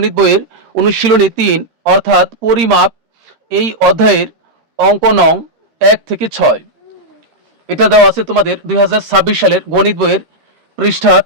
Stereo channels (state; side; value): late; left; 13 ms